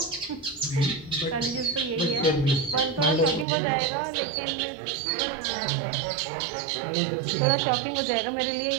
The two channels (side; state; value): left; drops out; at 3.5 s